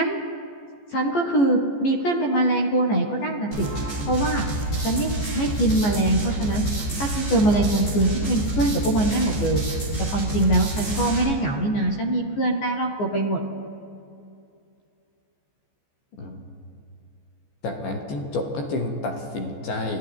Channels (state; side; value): late; right; 14 ms